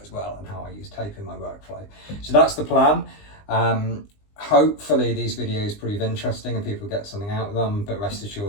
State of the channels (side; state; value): right; late; 20 ms